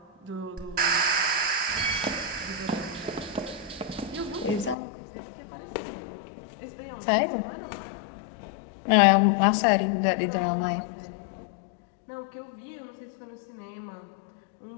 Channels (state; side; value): drops out; right; at 4.8 s